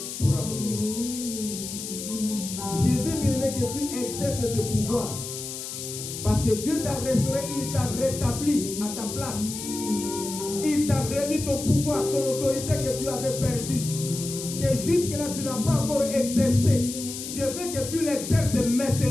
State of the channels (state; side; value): noise; left; hiss, 8 dB below the sound